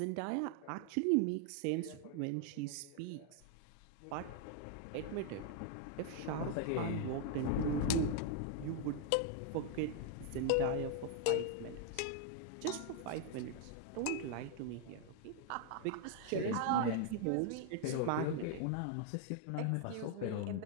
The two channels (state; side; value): different; both; correlation 0.00